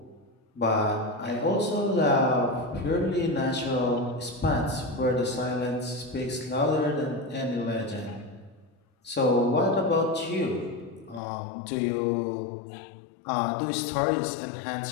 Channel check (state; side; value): drops out; right; at 11.2 s